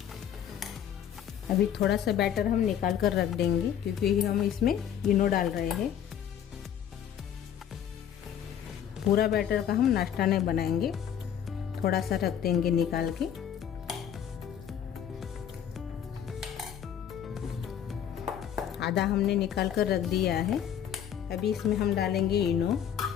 अभी थोड़ा सा बैटर हम निकाल कर रख देंगे, क्योंकि हम इसमें इनो डाल रहे हैं। पूरा बैटर का हम नाश्ता नहीं बनाएंगे, थोड़ा सा रख देंगे निकाल के। आधा हमने निकाल कर रख दिया है। अभी इसमें हम डालेंगे इनो।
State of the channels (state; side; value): quieter; right; 9.4 dB